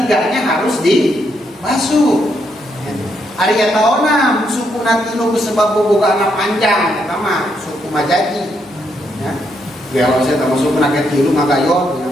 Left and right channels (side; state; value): both; normal; correlation 0.77